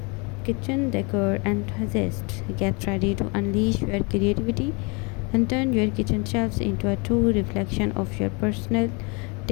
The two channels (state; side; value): quieter; right; 30.8 dB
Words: enthusiasts. Get ready to unleash your creativity and turn your kitchen shelves into a true reflection of your personal